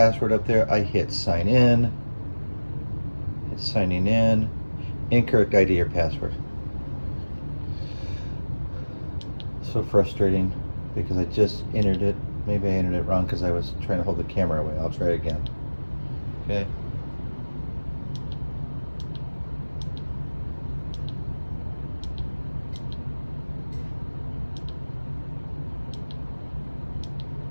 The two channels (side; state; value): both; inverted; correlation -1.00